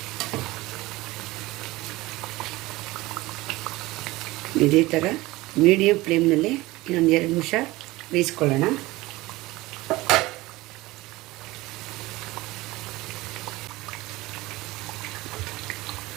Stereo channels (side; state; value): left; quieter; 19.8 dB